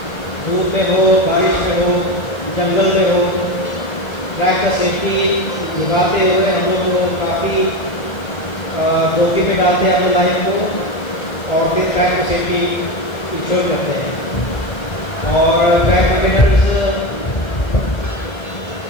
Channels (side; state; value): right; late; 1.8 ms